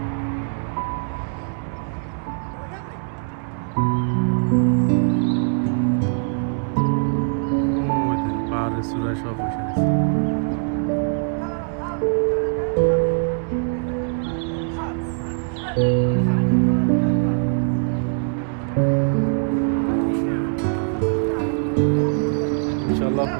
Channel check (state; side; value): silent; left; digital silence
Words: পাহাড়ের চূড়ায় সব বসে গেছে। ইনশাল্লাহ